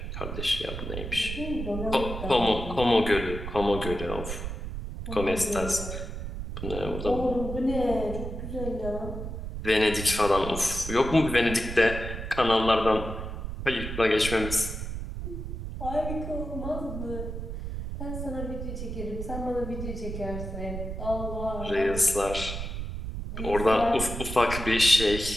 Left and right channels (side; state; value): right; noise; rumble, 6 dB below the sound